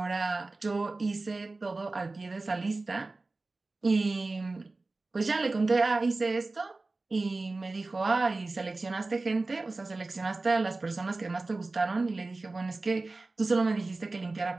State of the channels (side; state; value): left; quieter; 3.4 dB